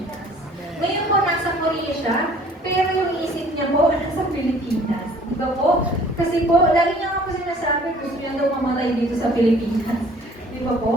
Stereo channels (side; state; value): both; normal; correlation 0.54